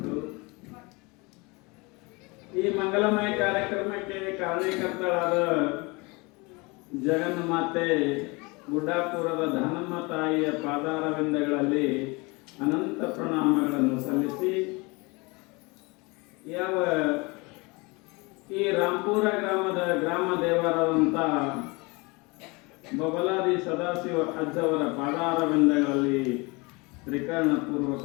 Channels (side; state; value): right; quieter; 26.7 dB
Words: ಈ ಮಂಗಲಮಯ ಕಾರ್ಯಕ್ರಮಕ್ಕೆ ಕಾರಣೀಕರ್ತಳಾದ ಜಗನ್ಮಾತೆ ಗುಡ್ಡಾಪುರದ ದಾನಮ್ಮ ತಾಯಿಯ ಪಾದಾರವಿಂದಗಳಲ್ಲಿ ಅನಂತ ಪ್ರಣಾಮಗಳನ್ನು ಸಲ್ಲಿಸಿ ಯಾವ ಈ ರಾಂಪುರ ಗ್ರಾಮದ ಗ್ರಾಮ ದೇವರಾದಂಥ ಬಬಲಾದಿ ಸದಾಶಿವ ಅಜ್ಜವರ ಪಾದಾರವಿಂದಗಳಲ್ಲಿ